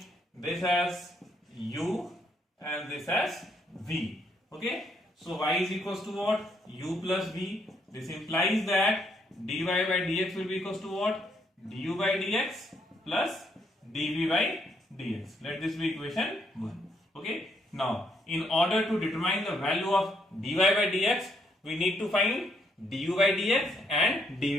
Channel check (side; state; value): both; normal; correlation 0.73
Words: this as u and this as v. Okay, so y is equals to what? U plus v. This implies that dy by dx will be equals to what? Du by dx plus dv by dx. Let this be equation 1. Okay, now in order to determine the value of dy by dx, we need to find du by dx and